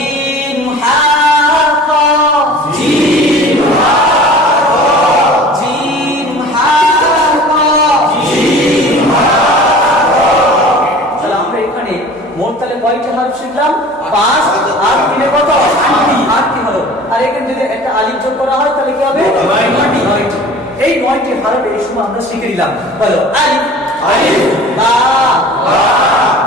হা খ। জিম হা খ। জিম হা খ। জিম হা। মোট তাহলে কয়টি হরফ শিখলাম? 5 আর 3 এ কত? 8টি হরফ। আর এখানে যদি একটা আলিফ যোগ করা হয় তাহলে কি হবে? 9টি। এই 9টি হরফ এই সময় আমরা শিখে নিলাম। বলো আলিফ, আলিফ, বা, বা,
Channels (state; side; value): noise; right; hum, 29 dB below the sound